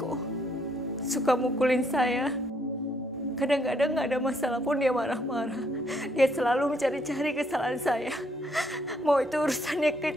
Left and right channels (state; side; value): normal; both; correlation 0.70